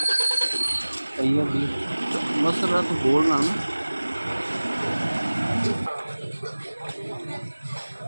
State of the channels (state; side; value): inverted; both; correlation -1.00